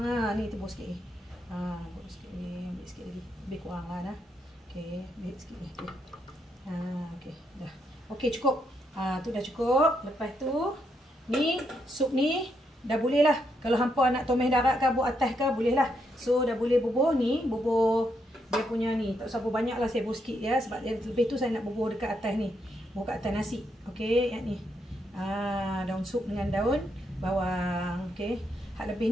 Ni tebus sikit ni. Tebus sikit ni, ambil sikit lagi. Lebih kurang lah dah. Okey, ambil sikit ni. Okey, dah. Okey, cukup. Tu dah cukup. Lepas tu ni sup ni dah boleh lah. Kalau hampa nak tomeh darat ke buat atas ke boleh lah. So dah boleh bubuh ni, bubuh dia punya ni. Tak usah bubuh banyak lah, saya bubuh sikit ya. Sebab lebih tu saya nak bubuh dekat atas ni. Bubuh kat atas nasi. Okey, yang ni. Daun sup dengan daun bawang. Okey. Hak lebih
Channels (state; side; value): normal; both; correlation 0.78